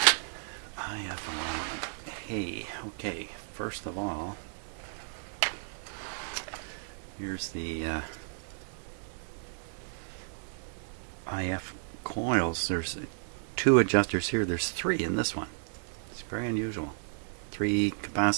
IF alignment. Hey, okay. First of all, here's the IF coils. There's 2 adjusters here. There's 3 in this one. It's very unusual. 3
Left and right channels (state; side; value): silent; left; digital silence